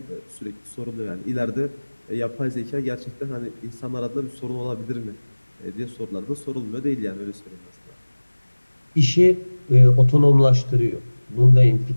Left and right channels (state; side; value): inverted; both; correlation -1.00